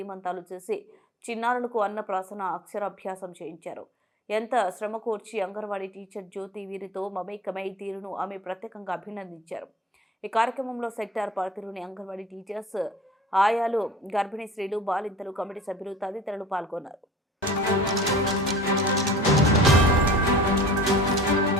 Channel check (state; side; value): normal; both; correlation 0.44